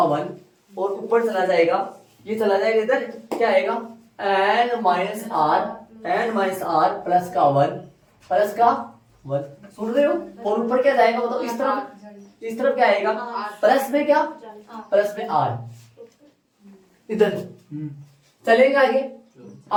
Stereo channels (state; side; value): identical; both; correlation 1.00